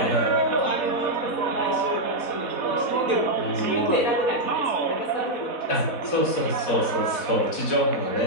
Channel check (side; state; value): right; late; 4.1 ms